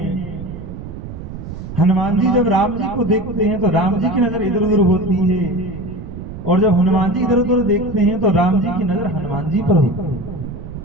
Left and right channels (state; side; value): noise; right; rumble, 10 dB below the sound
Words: हनुमान जी जब राम जी को देखते हैं तो राम जी की नजर इधर उधर होती है, और जब हनुमान जी इधर उधर देखते हैं तो राम जी की नजर हनुमान जी पर होती है।